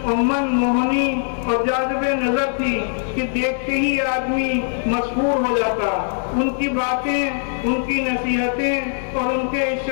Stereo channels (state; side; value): silent; right; 65 dB below the other